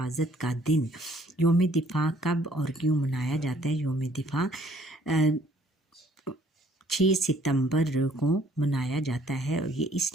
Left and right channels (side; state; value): both; normal; correlation 0.60